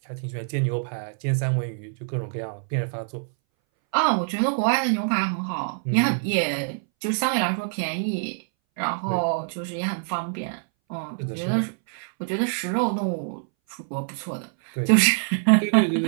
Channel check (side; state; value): left; silent; 61 dB below the other